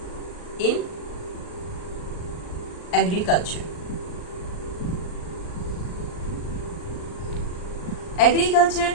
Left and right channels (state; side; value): late; right; 39 ms